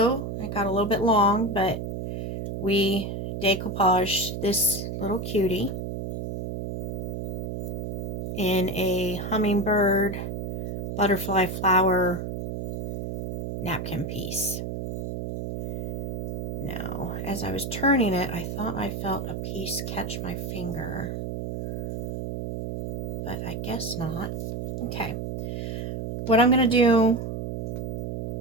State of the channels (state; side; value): noise; right; hum, 3 dB below the sound